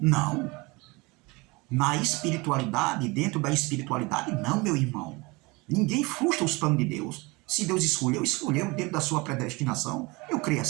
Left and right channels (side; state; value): left; quieter; 25.1 dB